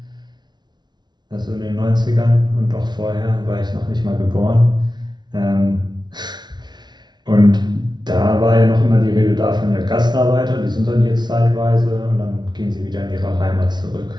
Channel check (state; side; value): late; left; 0.20 ms